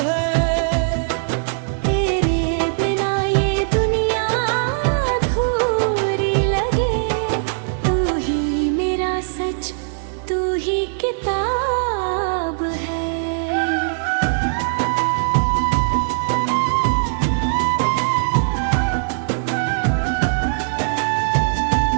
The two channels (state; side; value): silent; left; digital silence